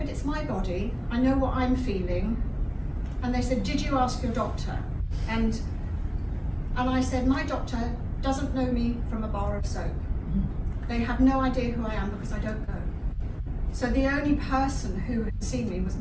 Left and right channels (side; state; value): both; identical; correlation 1.00